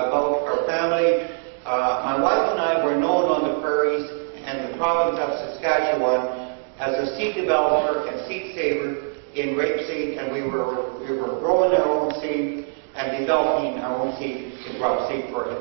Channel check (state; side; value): silent; left; digital silence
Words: our family. My wife and I were known on the prairies and the province of Saskatchewan as a seed developer and seed saver in rapeseed, and we were growing our own seed and developing our own seed in crop seed for